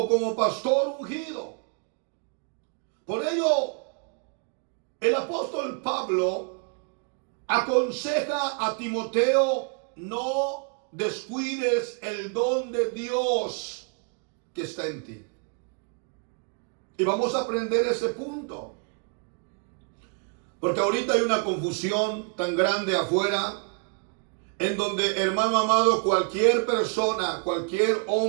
como pastor ungido. Por ello, el apóstol Pablo aconseja a Timoteo: no descuides el don de Dios que está en ti. Y vamos a aprender ese punto. Porque ahorita hay una confusión tan grande afuera, en donde, hermano amado, cualquier persona, cualquier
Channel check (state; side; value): quieter; left; 38.5 dB